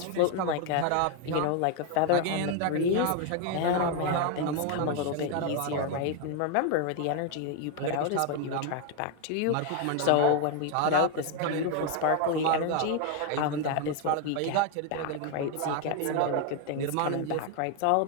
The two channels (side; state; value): both; different; correlation 0.01